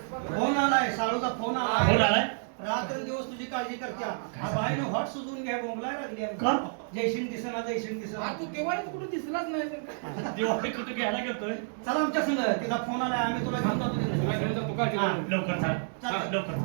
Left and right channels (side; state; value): left; silent; digital silence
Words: फोन आलाय, साळूचा फोन फोन आलाय. आलाय रात्र दिवस तुझी काळजी करत्या. हा बाईनं हॉट सुजून घ्या, बोंबलाय लागली आहे. का? जयसिंग दिसेना, जयसिंग दिसेना. तू तेव्हा कुठे दिसलाच नाही तर. दिवाळी कुठे घ्यायला गेलतोय? चला आमच्या संग, तिचा फोन आलाय, आम्ही तुला घेऊन जातो तिथे. तुला घेऊन जातो का? हा. लवकर चाल, चाल. लवकर